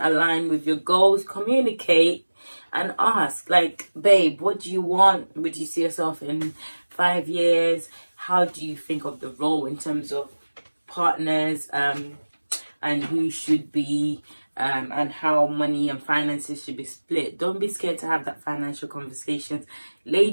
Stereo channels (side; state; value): both; inverted; correlation -1.00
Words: with your goals, communicate and ask, like, babe, what do you want? Would you see yourself in 5 years? How do you think of the role in terms of partners? and who should be and how money and finances should be split. Don't be scared to have that financial conversations.